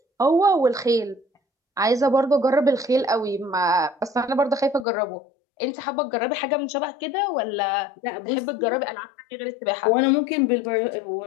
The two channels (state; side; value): drops out; right; at 4.9 s